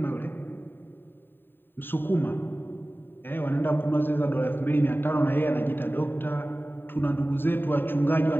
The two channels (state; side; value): late; right; 0.096 ms